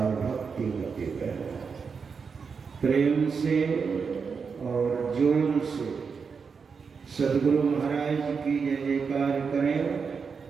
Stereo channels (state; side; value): quieter; left; 5.6 dB